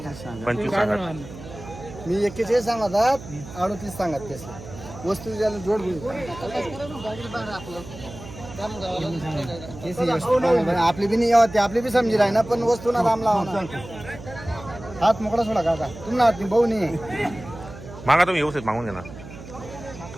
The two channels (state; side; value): noise; right; hum, 15 dB below the sound